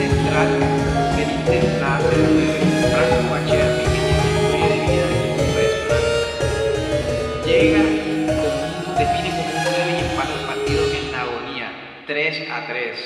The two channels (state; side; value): identical; both; correlation 1.00